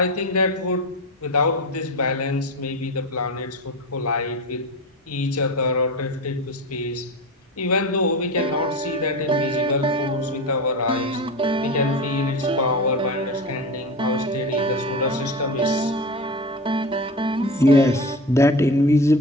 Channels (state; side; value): normal; both; correlation 0.26